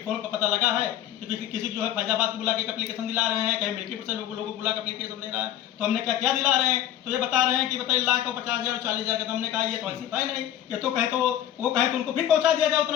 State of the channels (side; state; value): right; quieter; 11.7 dB